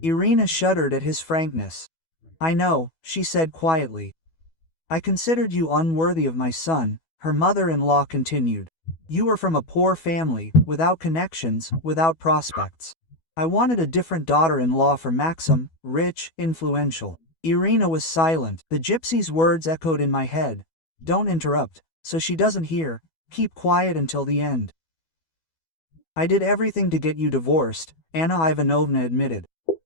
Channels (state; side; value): late; right; 12 ms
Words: shuddered at his frankness. I know, she said quietly. I considered you unworthy of my son, her mother-in-law continued. You were from a poor family, without connections, without prospects. I wanted a different daughter-in-law for Maxim, rich, influential. Irina was silent. The gypsy's words echoed in my head. Don't interrupt, so she doesn't hear. Keep quiet until the end. I did everything to get you divorced, Anna Ivanovna admitted.